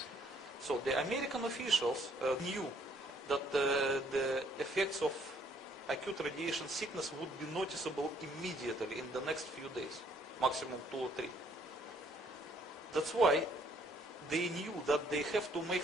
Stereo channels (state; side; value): normal; both; correlation 0.64